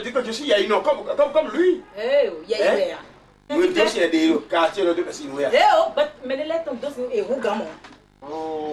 dire que je suis Yaïno comme lui. Oui, donc il y a des quartiers de Cassinoya. Mais les lettres sont et vous gamons.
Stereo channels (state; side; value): identical; both; correlation 1.00